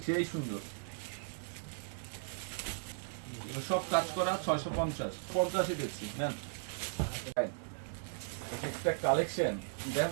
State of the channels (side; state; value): left; silent; 53 dB below the other